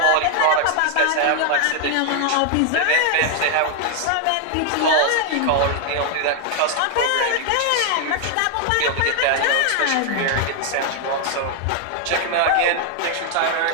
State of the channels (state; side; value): different; both; correlation 0.00